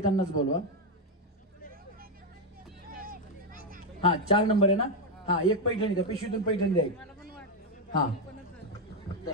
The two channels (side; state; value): both; normal; correlation 0.05